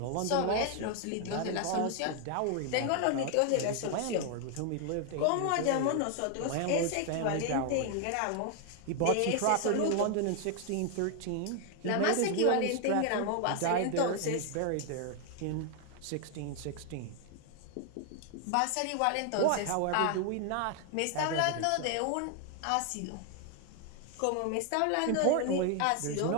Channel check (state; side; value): different; both; correlation 0.00